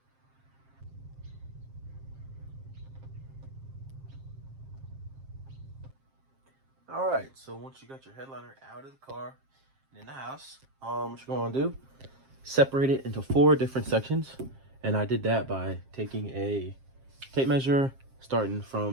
All right, so once you got your headliner out of the car and in the house, what you're gonna do, separate it into 4 different sections. And I did that by taking a tape measure, starting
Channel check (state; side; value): late; left; 7.5 ms